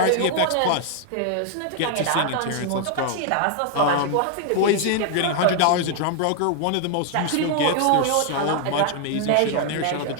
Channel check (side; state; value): both; different; correlation 0.00